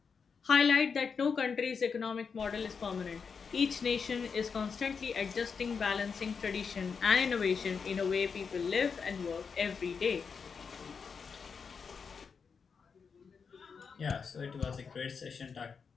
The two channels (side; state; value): right; quieter; 5.8 dB